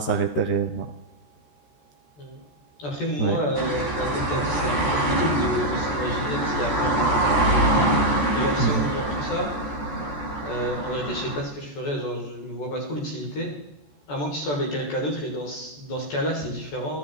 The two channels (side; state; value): right; late; 14 ms